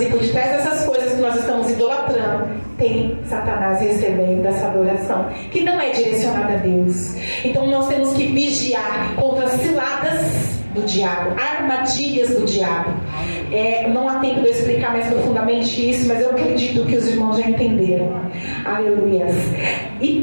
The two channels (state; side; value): inverted; both; correlation -1.00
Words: e por detrás dessas coisas que nós estamos idolatrando, tem Satanás recebendo essa adoração, que não é direcionada a Deus. Então nós temos que vigiar contra as ciladas do diabo, armadilhas do diabo. Não há tempo de eu explicar mais profundamente isso, mas eu acredito que os irmãos já entenderam. Aleluia.